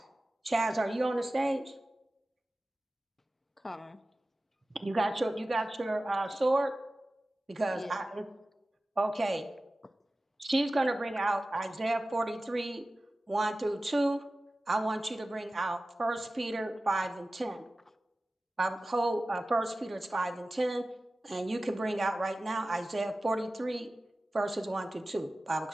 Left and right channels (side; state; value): both; normal; correlation 0.96